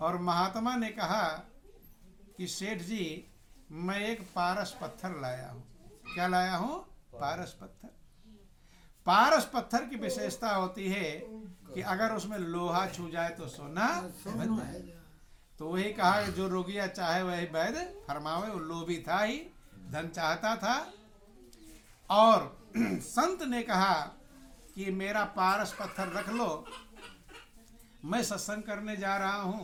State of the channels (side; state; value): both; identical; correlation 1.00